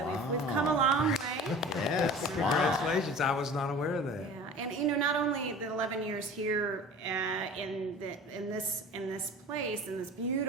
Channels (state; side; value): normal; both; correlation 0.40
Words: we've come a long way. Yes, Congratulations. I was not aware of that. Yeah, and not only the 11 years here in this place, in this